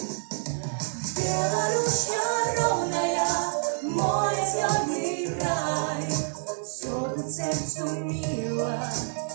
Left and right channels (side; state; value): left; silent; digital silence